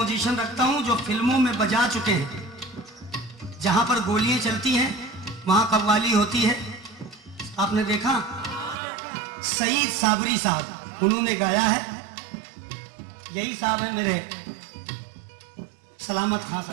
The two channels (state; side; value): drops out; left; at 8.8 s